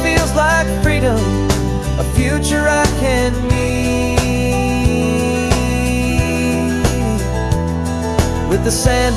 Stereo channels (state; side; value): identical; both; correlation 1.00